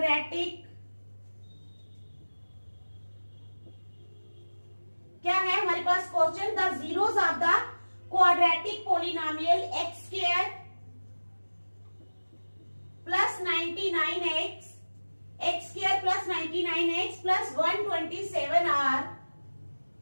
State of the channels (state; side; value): inverted; both; correlation -1.00